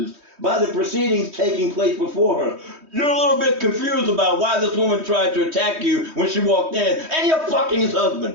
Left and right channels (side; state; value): left; late; 3.2 ms